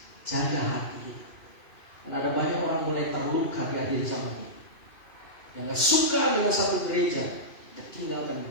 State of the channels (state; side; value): late; right; 2.5 ms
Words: Jaga hati. Dan ada banyak orang mulai terluka di akhir zaman ini. Yang gak suka dengan satu gereja, dia tinggalkan